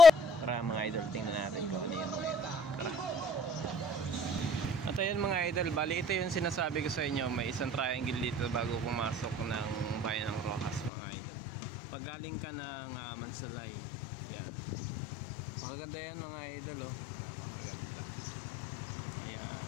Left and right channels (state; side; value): drops out; right; at 10.9 s